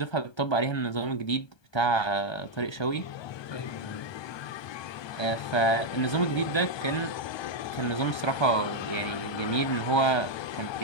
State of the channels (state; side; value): late; right; 1.2 ms